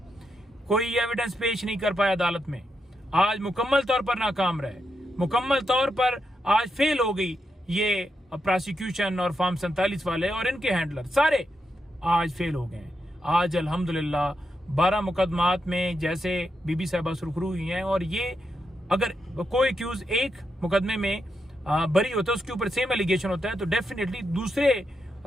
कोई एविडेंस पेश नहीं कर पाया अदालत में। आज मुकम्मल तौर पर नाकाम रहे, मुकम्मल तौर पर आज फेल हो गई ये प्रोसिक्यूशन और फॉर्म 47 वाले और इनके हैंडलर सारे आज फेल हो गए। आज अल्हम्दुलिल्लाह 12 मुकदमात में जैसे बीबी साहिबा सुरखरू हुई हैं और ये अगर कोई एक्यूज एक मुकदमे में बरी होता है, उसके ऊपर सेम एलिगेशन होता है, तो डेफिनेटली दूसरे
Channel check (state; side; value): normal; both; correlation 0.84